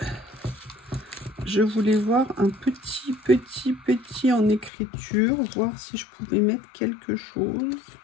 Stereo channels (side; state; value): right; drops out; at 4.7 s